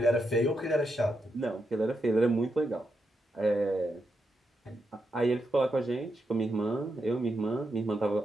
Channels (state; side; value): normal; both; correlation 0.84